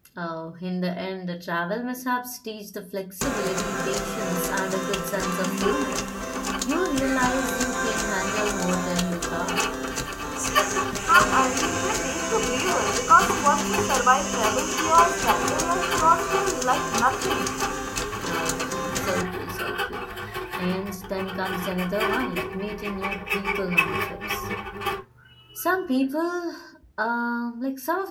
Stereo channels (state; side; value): identical; both; correlation 1.00